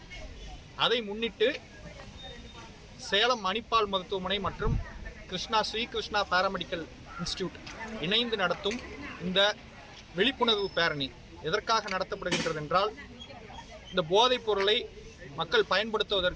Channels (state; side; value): identical; both; correlation 1.00